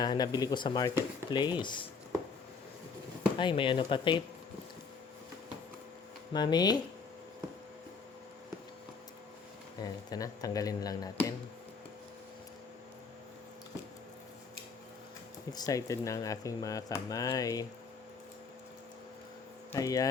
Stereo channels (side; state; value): right; quieter; 5.1 dB